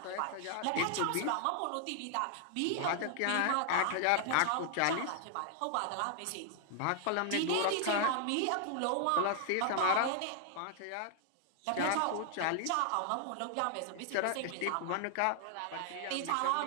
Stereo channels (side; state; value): both; different; correlation 0.00